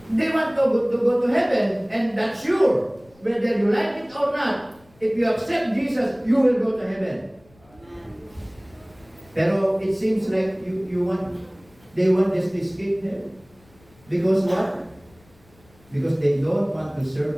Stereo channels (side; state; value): left; noise; rumble, 29 dB below the sound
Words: They want to go to heaven, and that's sure. Whether you like it or not, if you accept Jesus, you will go to heaven. Pero it seems like they want just to escape hell. Because what? Because they don't want to serve